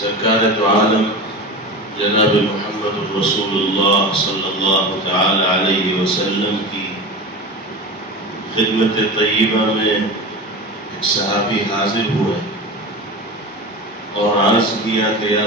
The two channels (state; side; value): normal; both; correlation 0.28